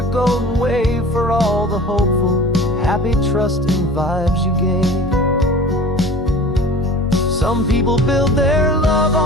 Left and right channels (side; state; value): both; normal; correlation 0.41